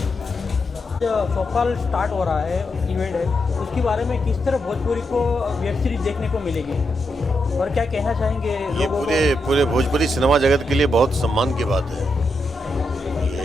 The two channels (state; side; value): normal; both; correlation 0.84